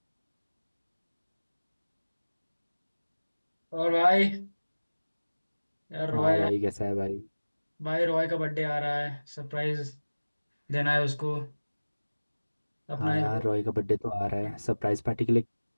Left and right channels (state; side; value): inverted; both; correlation -1.00